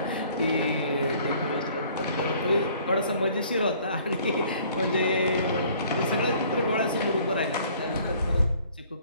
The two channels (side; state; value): both; inverted; correlation -0.56